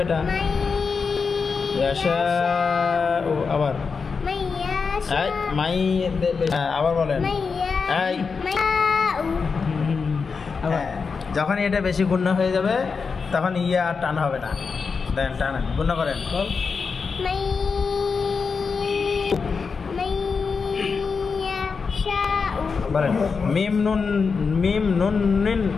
এটা। ইয়াশাউ, আবার মাই, আবার বলেন। যখন এটা বেশি গুণনা হয়ে যাবে তখন ইয়া আর টান হবে না। দেন টানেন, গুণনা করেন। বলেন মিম নুন মিম নুন নিন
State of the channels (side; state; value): right; quieter; 5.2 dB